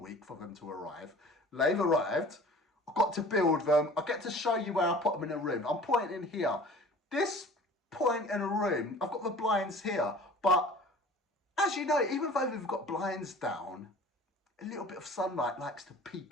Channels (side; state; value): both; normal; correlation 0.45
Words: for them to arrive. They've arrived. I got to build them. I get to show you where I put them in a room. I'm pointing here. This point in a room, I've got the blinds here, but as you know, even though we've got blinds down, a little bit of sunlight likes to